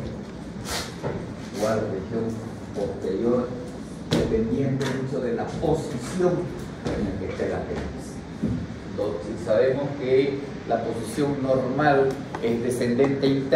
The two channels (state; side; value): identical; both; correlation 1.00